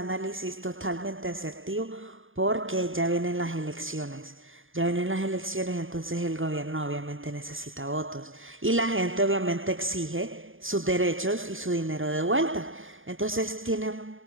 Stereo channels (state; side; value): late; left; 0.59 ms